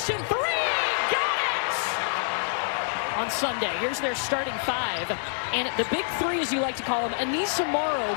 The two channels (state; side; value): silent; right; 60 dB below the other